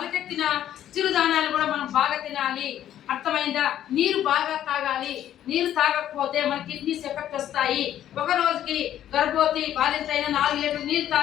చిరుధాన్యాలు కూడా మనం బాగా తినాలి. అర్థమైందా? నీరు బాగా తాగాలి. నీరు తాగకపోతే మన కిడ్నీస్ ఎఫెక్ట్ వస్తాయి. ఒక రోజుకి గర్భవతి బాలింత అయినా 4 లీటర్లు నీరు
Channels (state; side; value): quieter; right; 11.4 dB